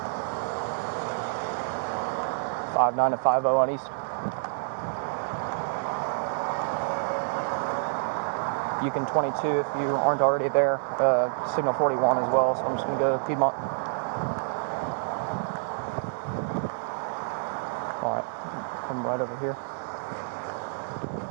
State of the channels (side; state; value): left; silent; digital silence